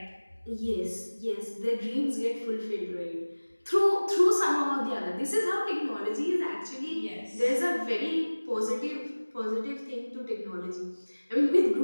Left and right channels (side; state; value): both; inverted; correlation -1.00